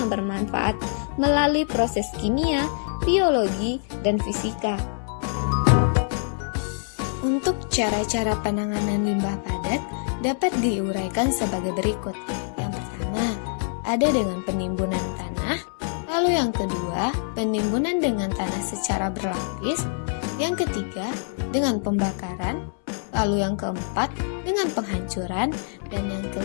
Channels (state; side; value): silent; right; 62 dB below the other